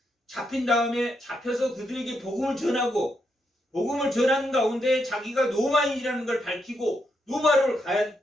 그들에게 복음을 전하고 복음을 전하는 가운데 자기가 로마인이라는 걸 밝히고 로마를 가야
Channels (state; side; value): normal; both; correlation 0.81